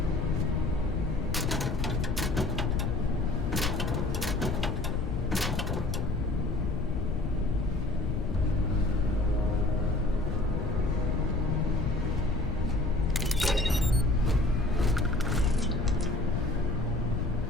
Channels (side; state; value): left; noise; rumble, 1 dB below the sound